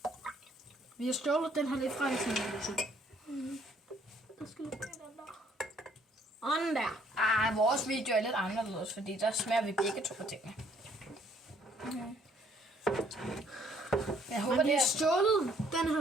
Vi har stjålet den her lidt fra Alexander Husum. Jeg skal lige den der. Og den der. Vores video er lidt anderledes, fordi der smager vi begge to på tingene. Jeg håber, Men vi det har er stjålet den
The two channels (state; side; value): normal; both; correlation 0.63